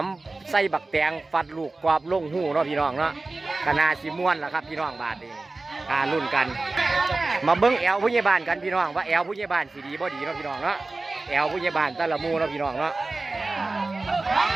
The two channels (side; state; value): left; quieter; 3.3 dB